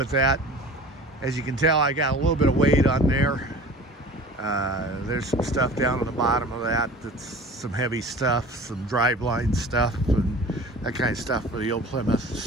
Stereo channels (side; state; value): both; normal; correlation 0.42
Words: that. As you can tell, I got a little bit of weight on there. There's some stuff down on the bottom of that that's some heavy stuff, some driveline stuff, and that kind of stuff for the old Plymouth.